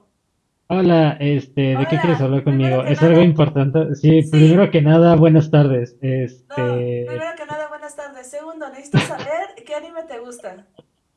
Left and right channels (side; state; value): both; identical; correlation 1.00